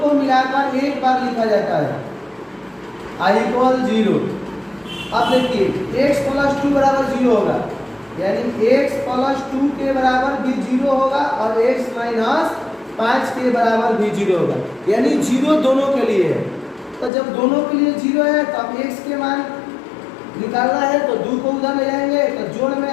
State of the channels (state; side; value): drops out; right; at 17.1 s